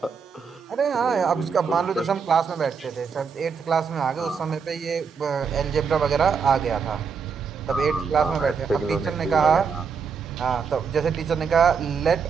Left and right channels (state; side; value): quieter; left; 5.9 dB